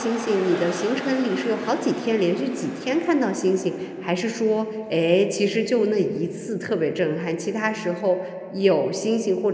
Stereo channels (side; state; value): both; identical; correlation 1.00